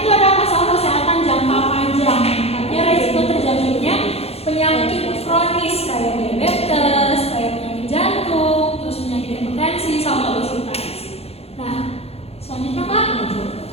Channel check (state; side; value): late; right; 0.29 ms